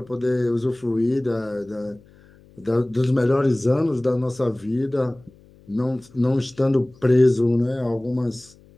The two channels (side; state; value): left; noise; hum, 27 dB below the sound